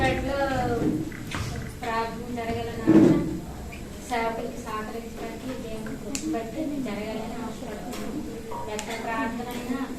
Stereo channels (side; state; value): both; identical; correlation 1.00